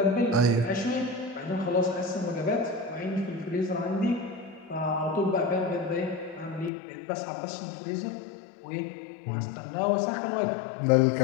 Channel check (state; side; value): drops out; right; at 6.7 s